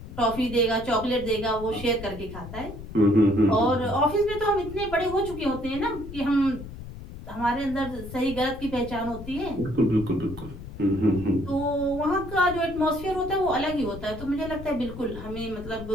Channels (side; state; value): left; noise; rumble, 12 dB below the sound